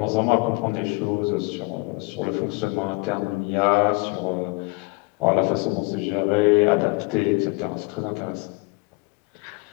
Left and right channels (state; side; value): quieter; right; 27.6 dB